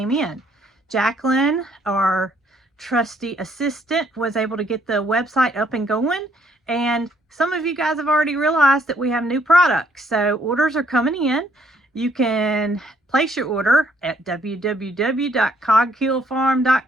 in. Jacqueline, our trusty assistant, was able to get the website up and going. And some of you guys have already realized that we have new products. So orders are coming in. You can place your order at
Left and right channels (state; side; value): normal; both; correlation 0.67